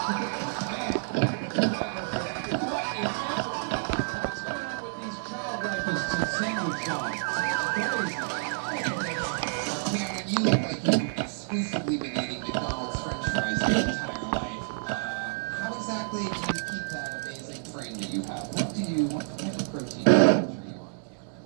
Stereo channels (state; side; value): silent; left; 59 dB below the other